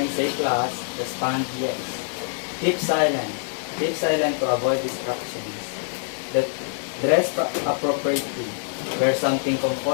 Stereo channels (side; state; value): right; silent; digital silence